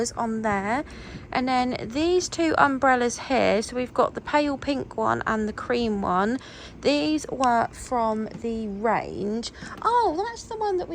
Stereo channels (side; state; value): both; identical; correlation 1.00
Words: on there. And then these 2 umbrellas here, so we've got the pale pink one and the cream one. These were from the range. Oh, that's the one that